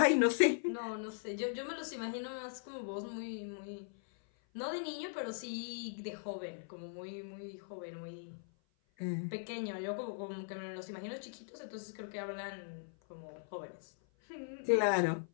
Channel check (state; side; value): silent; right; 51 dB below the other